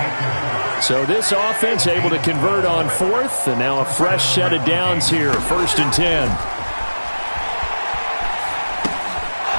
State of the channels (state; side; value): inverted; both; correlation -1.00